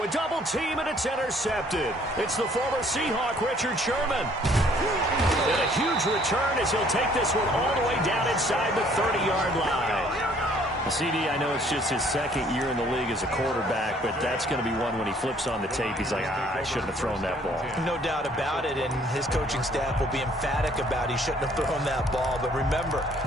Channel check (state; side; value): normal; both; correlation 0.60